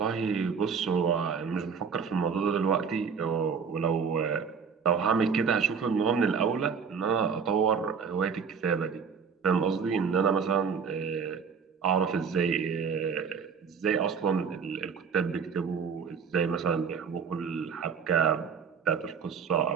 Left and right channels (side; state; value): left; quieter; 6.2 dB